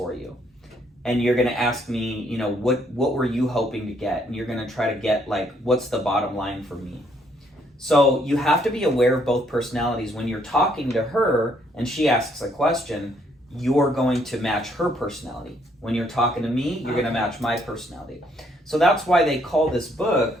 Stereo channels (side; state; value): both; normal; correlation 0.69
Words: you? And you're going to ask me, you know, what were you hoping to get? And you're going to try to get, like, what's the bottom line for me? So you have to be aware of both personalities. When you're talking to her and she asks a question, you're going to match her personality. When you're talking to me, you're going to match my personality. So that's why they call this book